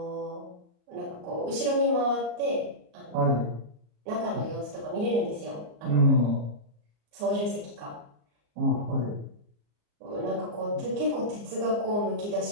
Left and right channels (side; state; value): left; late; 34 ms